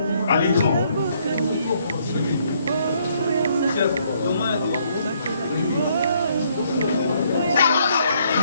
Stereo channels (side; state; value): both; inverted; correlation -0.69